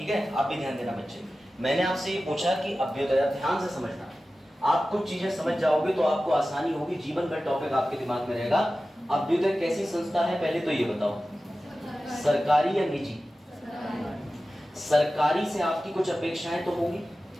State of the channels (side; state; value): both; normal; correlation 0.95